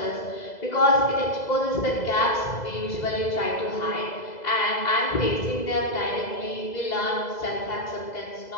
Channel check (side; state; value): right; late; 2.0 ms